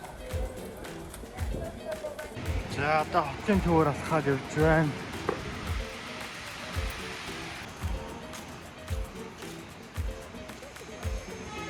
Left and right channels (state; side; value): identical; both; correlation 1.00